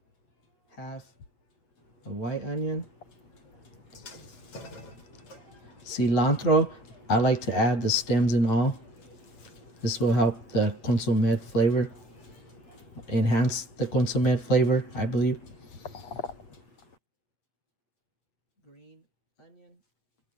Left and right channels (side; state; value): right; late; 8.7 ms